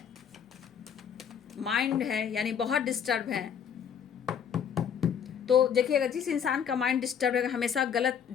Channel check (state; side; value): quieter; right; 7.9 dB